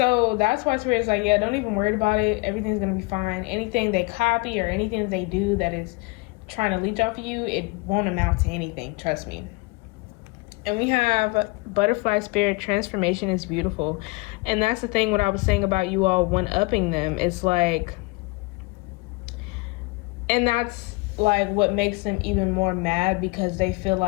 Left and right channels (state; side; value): quieter; right; 26.1 dB